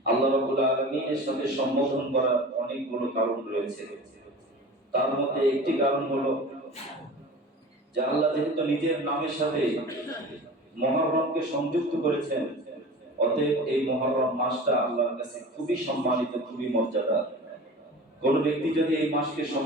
আল্লাহ রাব্বুল আলামিনের সাথে সম্বোধন করার অনেকগুলো কারণ রয়েছে। তার মধ্যে একটি কারণ হলো যে আল্লাহ যেহেতু নিজের নামের সাথে মুহররমকে সংযুক্ত করেছেন, অতএব এই মুহররম মাসটা আল্লাহর কাছে খুবই সম্মানিত, খুবই মর্যাদা। কোন ব্যক্তি যদি এই মাসকে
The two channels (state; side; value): normal; both; correlation 0.37